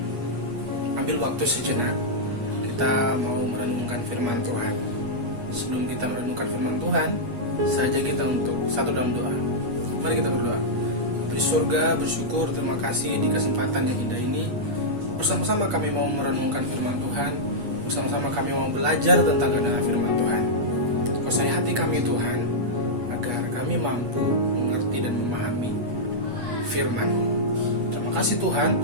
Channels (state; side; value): late; left; 8.3 ms